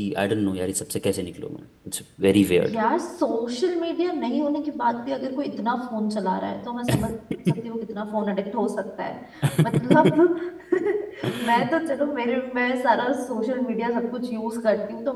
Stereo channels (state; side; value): identical; both; correlation 1.00